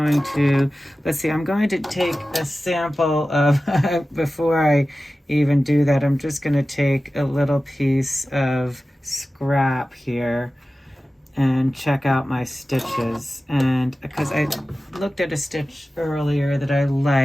to, let's see, I'm going to take a sample of, before I even do that, I'm just going to take a little piece of scrap here and check out my stitches. And because I looked at a stitch earlier that I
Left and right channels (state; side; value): normal; both; correlation 0.95